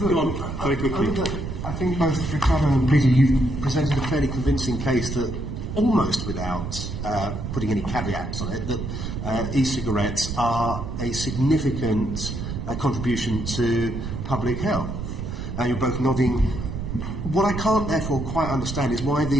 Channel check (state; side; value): noise; right; rumble, 5 dB below the sound